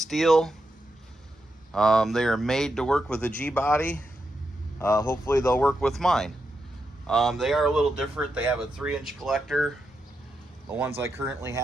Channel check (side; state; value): both; normal; correlation 0.85